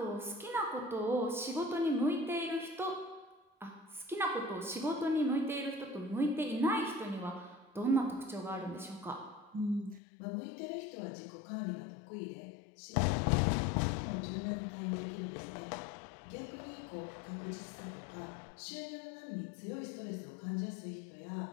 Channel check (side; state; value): right; drops out; at 10.0 s